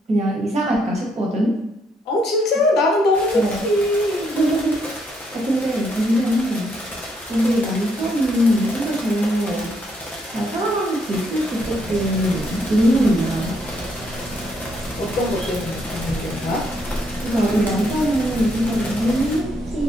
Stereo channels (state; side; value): normal; both; correlation 0.73